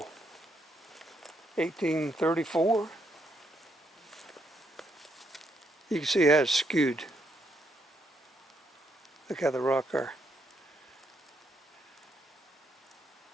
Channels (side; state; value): both; normal; correlation 0.76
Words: 1834. You can see how it's skewed. Look how the rock are.